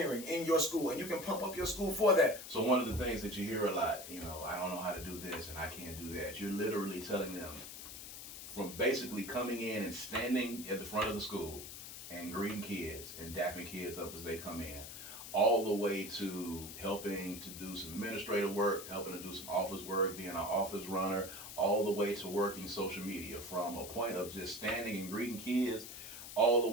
in your school, and you can pump up your school for that. So one of the things that you hear a lot, I don't know how to do this and I can't do that. You're literally telling them, from basically coming in and standing at the front of the school and greeting kids and dapping kids up as they come in, all the way to helping to do some administrative work, helping to do some office work, being an office runner, all the way to working social media, from a point of just standing and greeting kids all the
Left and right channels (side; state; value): left; noise; hiss, 11 dB below the sound